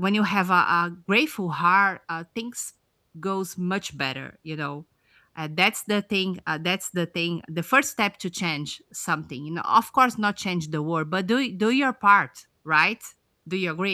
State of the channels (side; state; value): both; identical; correlation 1.00